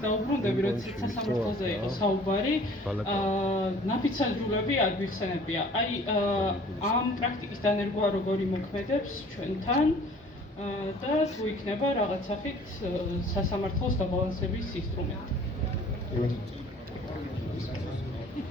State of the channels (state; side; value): normal; both; correlation 0.51